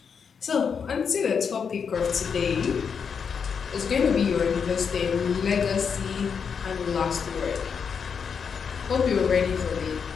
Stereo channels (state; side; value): quieter; right; 6.4 dB